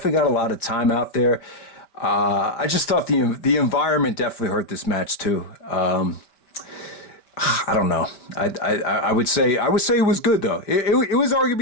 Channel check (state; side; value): late; right; 5.2 ms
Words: got a lot of time out there. I just thought the environment definitely hurt this match too. I don't know. I would say it was good though. It was